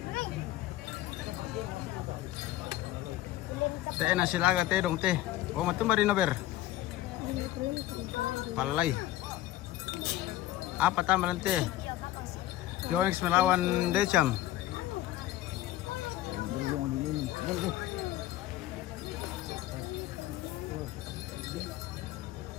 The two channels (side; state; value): right; quieter; 14.7 dB